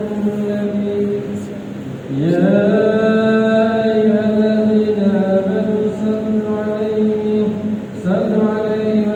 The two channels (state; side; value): identical; both; correlation 1.00